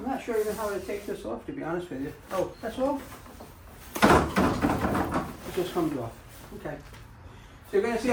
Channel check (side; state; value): both; identical; correlation 1.00